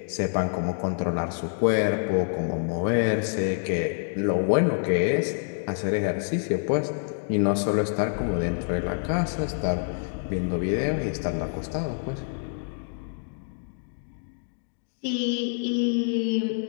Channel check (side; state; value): right; silent; digital silence